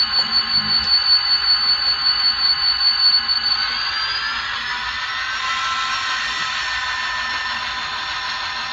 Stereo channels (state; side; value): identical; both; correlation 1.00